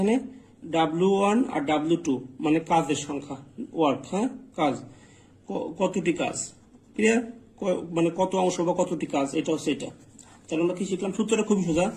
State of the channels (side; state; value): both; identical; correlation 1.00